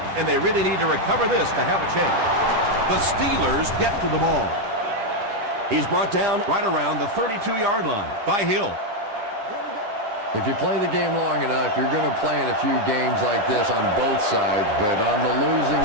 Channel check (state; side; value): late; left; 9.8 ms